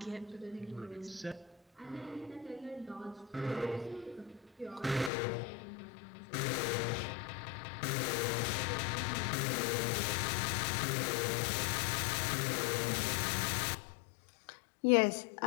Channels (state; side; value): drops out; right; at 5.1 s